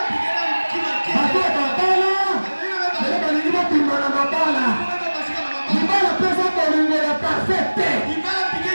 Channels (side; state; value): both; inverted; correlation -1.00